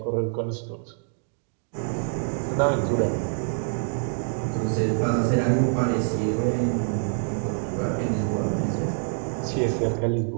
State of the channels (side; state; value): left; silent; 60 dB below the other